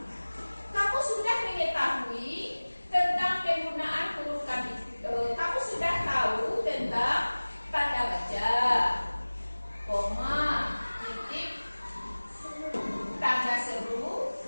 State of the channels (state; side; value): inverted; both; correlation -1.00